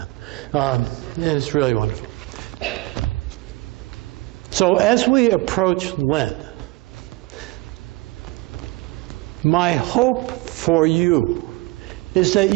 And it's really wonderful. So as we approach Lent, my hope for you is that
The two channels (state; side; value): quieter; left; 21.9 dB